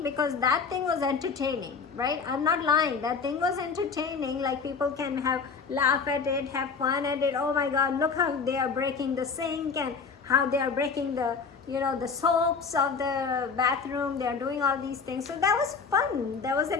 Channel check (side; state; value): right; quieter; 5.4 dB